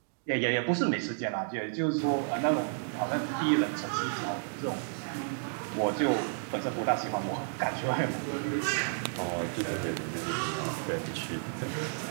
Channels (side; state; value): left; silent; digital silence